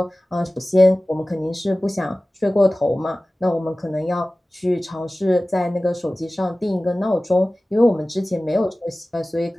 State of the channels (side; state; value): both; normal; correlation 0.97